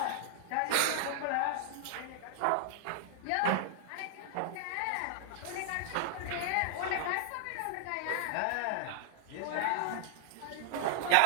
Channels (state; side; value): different; both; correlation -0.01